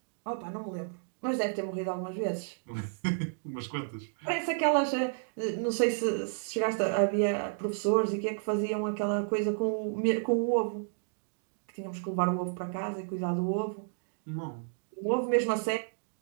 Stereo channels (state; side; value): silent; left; digital silence